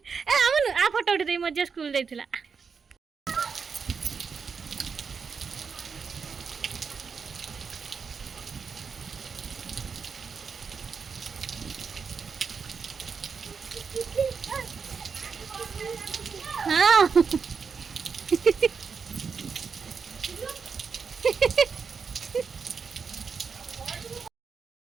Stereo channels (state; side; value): quieter; left; 5.7 dB